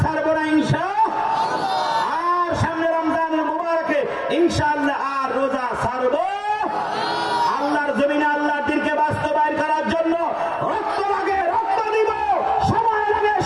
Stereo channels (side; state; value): both; identical; correlation 1.00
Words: ছাড়বো না ইনশাআল্লাহ, আর সামনে রমজানুল মুবারকে ইনশাআল্লাহ আর রোজা ছাড়বো। আল্লাহর জমিনে আল্লাহর দ্বীনকে বাস্তবায়ন করার জন্য রক্ত লাগে রক্ত দিব, সময় লাগে